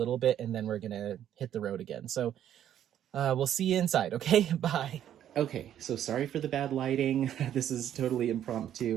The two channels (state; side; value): quieter; left; 10.7 dB